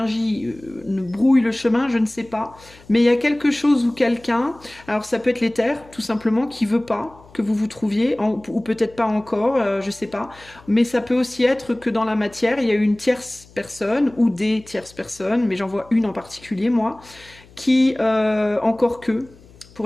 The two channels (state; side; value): noise; left; hum, 25 dB below the sound